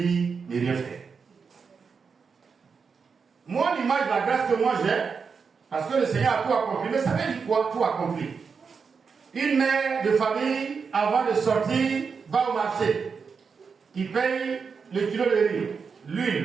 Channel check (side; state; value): left; quieter; 5.6 dB